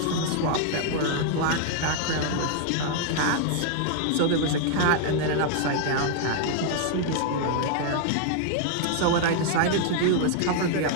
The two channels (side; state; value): both; different; correlation 0.00